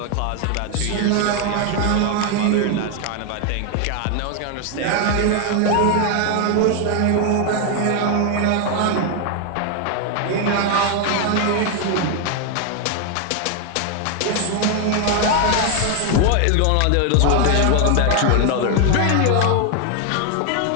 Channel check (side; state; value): both; different; correlation 0.01